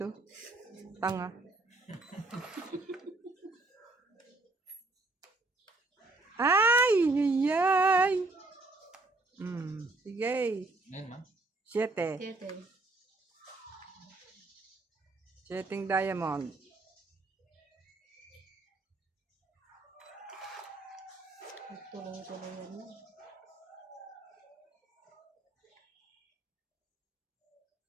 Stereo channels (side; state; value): left; quieter; 3.0 dB